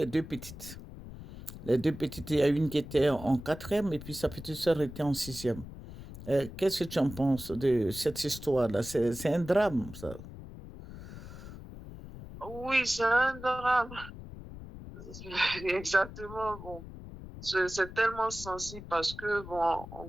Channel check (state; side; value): noise; left; rumble, 13 dB below the sound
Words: deux petites. Les deux petites, il y a une qui était en quatrième et puis sa petite sœur était en sixième. Qu'est-ce que tu en penses de cette histoire-là? C'est un drame, ça. Oui, c'est un drame. Exactement. Bon, c'est tellement sensible parce que, bon, en